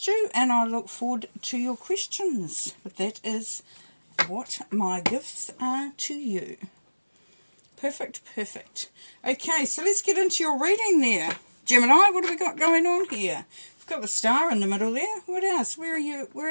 you, and I look forward to your questions. But that is what my gifts are to you. Perfect, perfect. Okay, so let's get into your reading there. Gemini, what have we got going on here? We've got the star in the middle there. What else? Where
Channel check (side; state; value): both; inverted; correlation -1.00